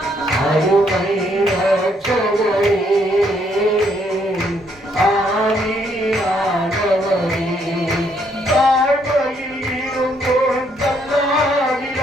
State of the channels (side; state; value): both; normal; correlation 0.70